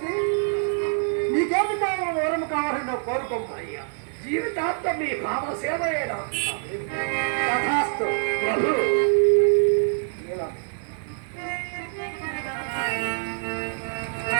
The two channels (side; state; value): left; silent; 62 dB below the other